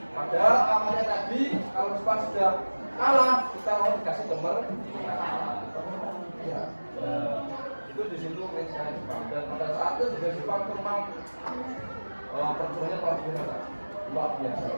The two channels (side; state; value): both; inverted; correlation -1.00